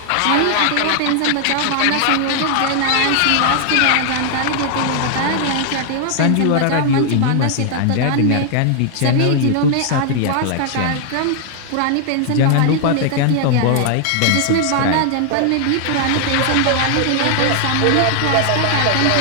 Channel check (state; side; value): different; both; correlation 0.00